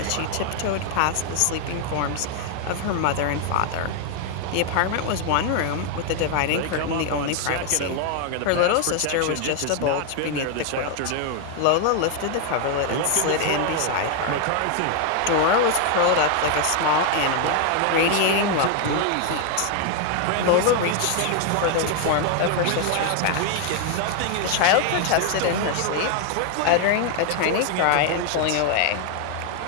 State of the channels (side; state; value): both; different; correlation 0.00